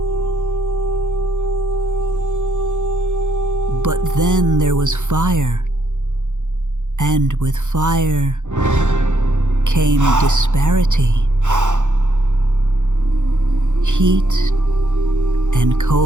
But then there was fire, and with fire came disparity. Heat and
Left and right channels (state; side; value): late; left; 0.85 ms